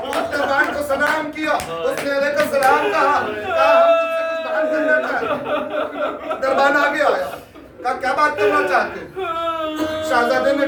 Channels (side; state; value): both; identical; correlation 1.00